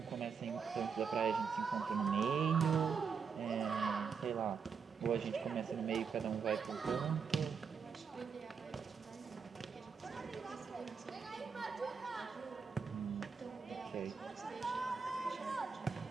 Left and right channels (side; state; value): left; quieter; 6.0 dB